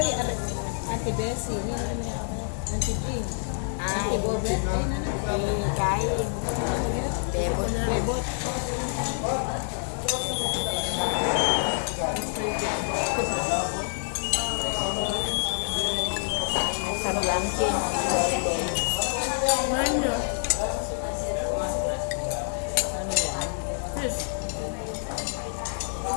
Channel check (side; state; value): right; silent; digital silence